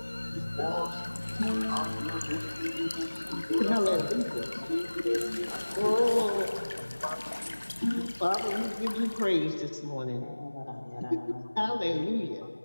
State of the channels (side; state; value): both; inverted; correlation -1.00